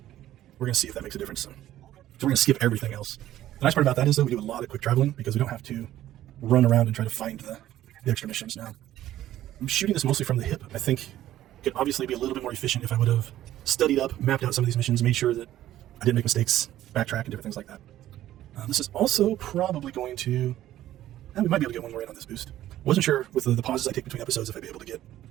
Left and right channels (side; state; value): left; quieter; 13.3 dB